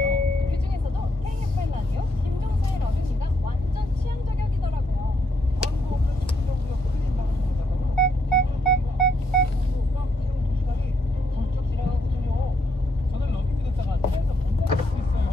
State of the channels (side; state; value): both; normal; correlation 0.76